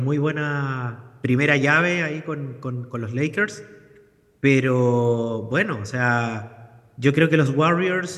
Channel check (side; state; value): both; identical; correlation 1.00